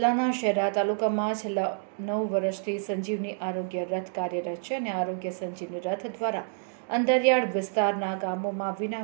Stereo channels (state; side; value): silent; left; digital silence